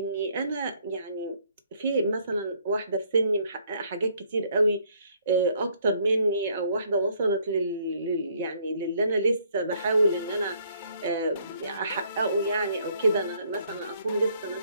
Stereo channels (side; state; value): both; inverted; correlation -0.66